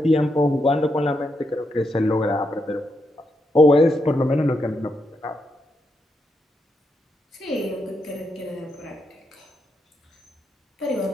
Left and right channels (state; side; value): normal; both; correlation 0.82